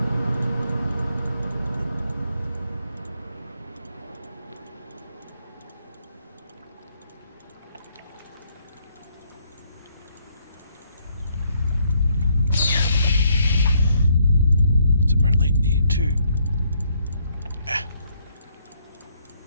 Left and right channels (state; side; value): inverted; both; correlation -0.70